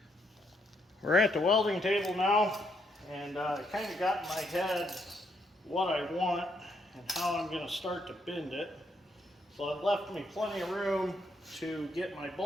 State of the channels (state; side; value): normal; both; correlation 0.75